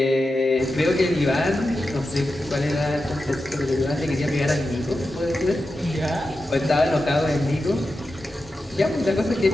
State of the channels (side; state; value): both; normal; correlation 0.91